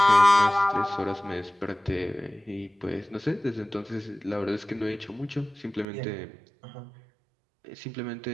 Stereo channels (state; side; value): drops out; left; at 5.9 s